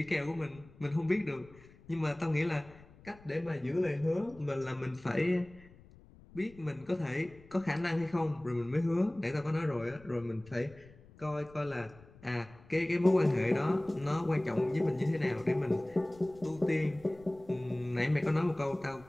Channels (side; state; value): left; noise; rumble, 23 dB below the sound